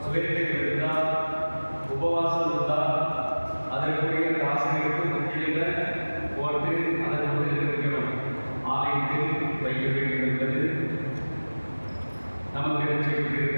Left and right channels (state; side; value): inverted; both; correlation -1.00